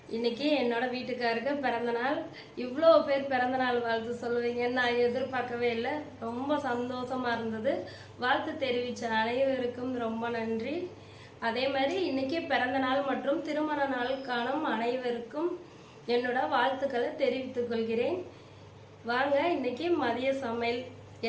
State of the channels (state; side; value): identical; both; correlation 1.00